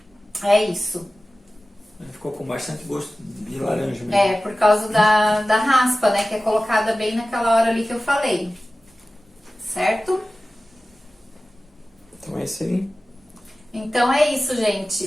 isso. Ficou com bastante gosto de laranja mesmo. É, por causa da raspa, né? Que é colocada bem naquela hora ali que eu falei. Certo? Então é isso aí. Então é isso,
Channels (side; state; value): both; normal; correlation 0.96